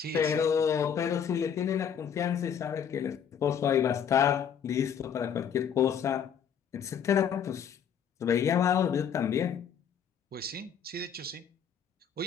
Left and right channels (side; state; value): right; quieter; 7.9 dB